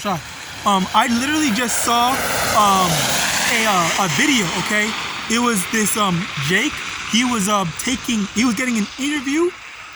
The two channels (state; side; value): identical; both; correlation 1.00